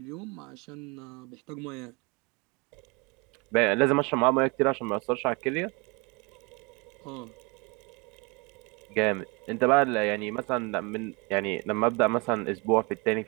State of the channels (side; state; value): left; quieter; 28.6 dB